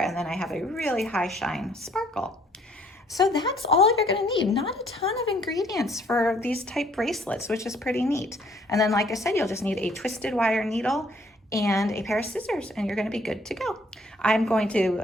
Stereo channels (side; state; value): both; normal; correlation 0.63